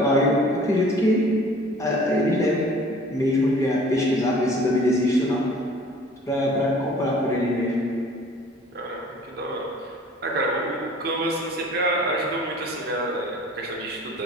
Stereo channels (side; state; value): both; normal; correlation 0.49